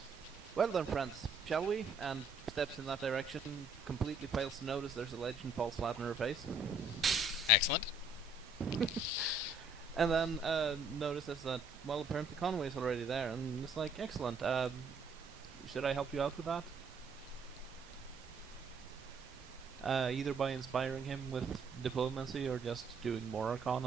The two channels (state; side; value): quieter; left; 3.0 dB